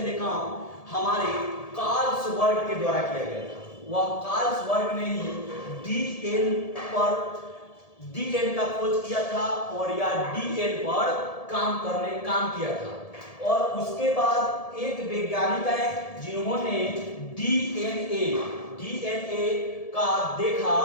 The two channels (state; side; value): late; right; 1.7 ms